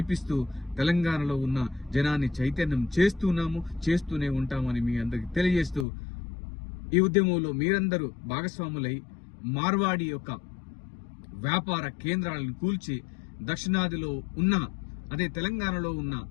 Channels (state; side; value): drops out; right; at 5.9 s